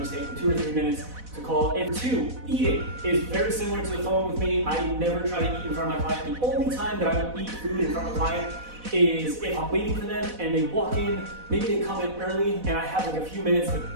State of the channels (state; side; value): late; left; 4.1 ms